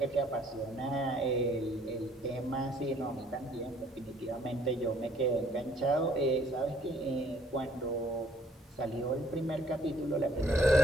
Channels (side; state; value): both; normal; correlation 0.63